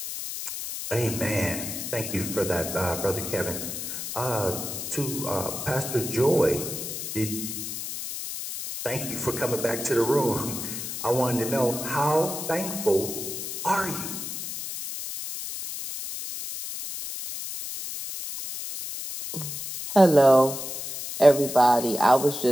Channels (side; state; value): left; noise; hiss, 6 dB below the sound